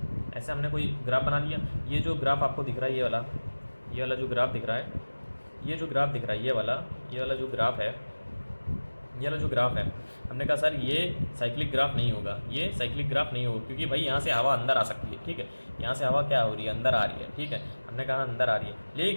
ऐसे हमने कोई ग्राफ बना लिया। ये जो ग्राफ आपको दिख रहा है, ये वाला जो ग्राफ दिख रहा है, ये जो ग्राफ दिख रहा है, ये वाला जो ग्राफ है, ये वाला जो ग्राफ है, हमने कहा सर ये साइक्लिक ग्राफ नहीं होगा, ये साइक्लिक ग्राफ नहीं होगा, क्योंकि भाई यहाँ से हवा अंदर आ सकती है, ठीक है, यहाँ से हवा क्या हो रही है, अंदर आ रही है, ठीक है, हमने कहा अंदर आ रही है।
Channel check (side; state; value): both; inverted; correlation -1.00